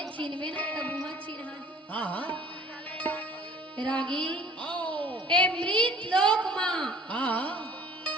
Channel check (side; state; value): both; normal; correlation 0.51